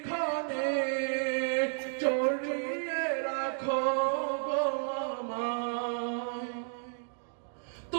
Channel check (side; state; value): left; silent; digital silence